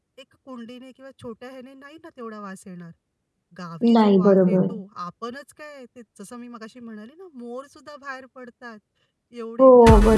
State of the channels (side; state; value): both; identical; correlation 1.00